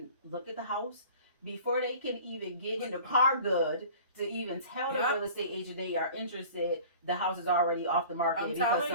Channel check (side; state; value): both; inverted; correlation -0.44